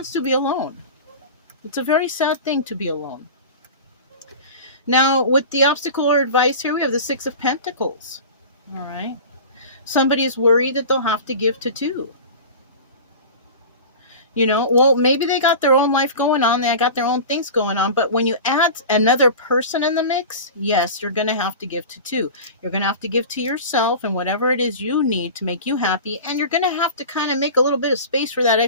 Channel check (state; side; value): inverted; both; correlation -0.33